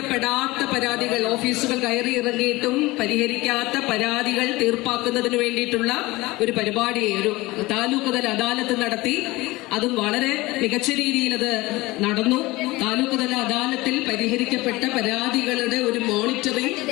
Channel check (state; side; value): quieter; right; 20.6 dB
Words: പരാതികൾ, ഓഫീസുകൾ കയറി ഇറങ്ങിയിട്ടും പരിഹരിക്കാത്ത പരാതികൾ തീർപ്പാക്കുന്നതിന് വേണ്ടിയിട്ടുള്ള ഒരു പരിപാടി, ഒരു താലൂക്ക് തല അദാലത്ത് നടത്തി. അതും വളരെ മികച്ച രീതിയിൽ അത് നടന്നു. താലൂക്ക് തല അദാലത്തിൽ പരിഹരിക്കപ്പെട്ട പരാതികളുടെ ഒരു മോണിറ്ററിംഗ്